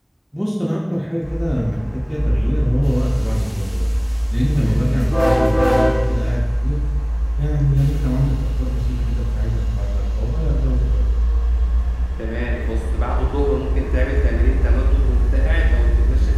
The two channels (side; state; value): both; identical; correlation 1.00